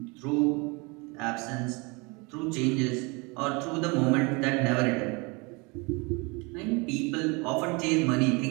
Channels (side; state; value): left; quieter; 28.4 dB